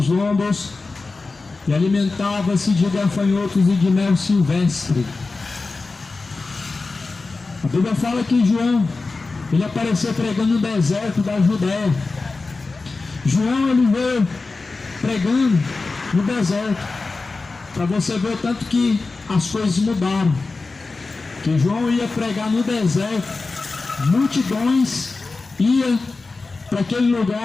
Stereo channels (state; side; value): quieter; right; 3.8 dB